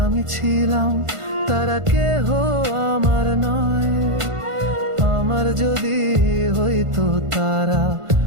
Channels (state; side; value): late; left; 1.5 ms